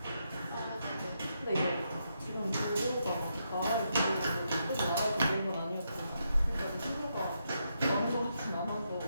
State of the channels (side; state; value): both; inverted; correlation -0.81